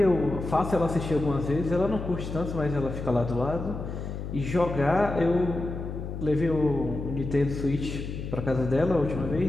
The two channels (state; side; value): noise; left; hum, 6 dB below the sound